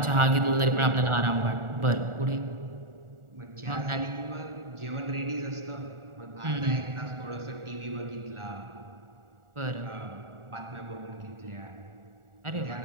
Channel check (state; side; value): late; left; 1.4 ms